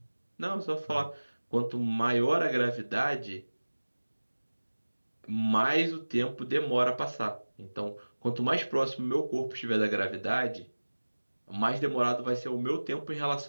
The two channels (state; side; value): inverted; both; correlation -1.00